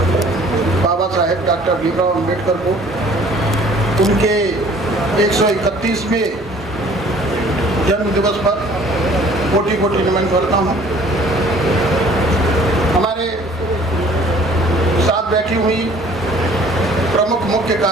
बाबा साहेब डॉक्टर भीमराव अम्बेडकर को उनके 131वें जन्म दिवस पर कोटि कोटि नमन करता हूँ। हमारे साथ बैठी हुई प्रमुख मुख्य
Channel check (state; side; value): normal; both; correlation 0.53